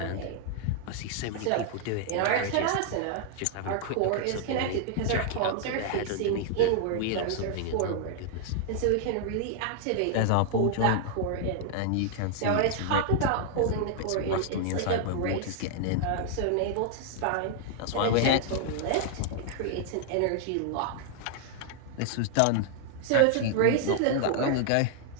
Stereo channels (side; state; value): both; different; correlation 0.00